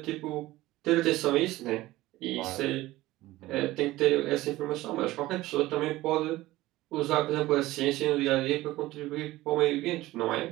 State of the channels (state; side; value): quieter; left; 17.5 dB